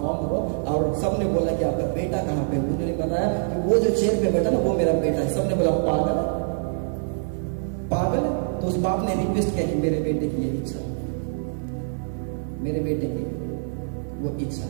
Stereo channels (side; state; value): left; silent; digital silence